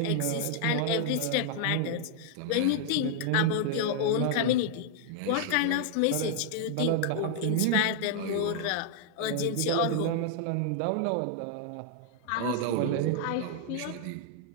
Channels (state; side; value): different; both; correlation -0.01